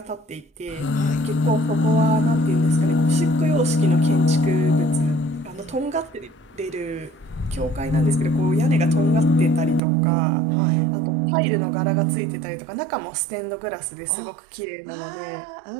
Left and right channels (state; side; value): drops out; left; at 9.8 s